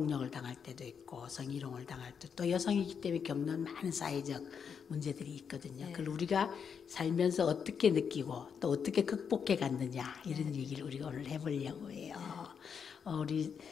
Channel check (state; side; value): quieter; right; 6.8 dB